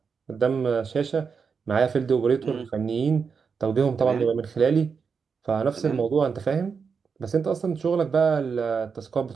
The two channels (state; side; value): quieter; left; 5.8 dB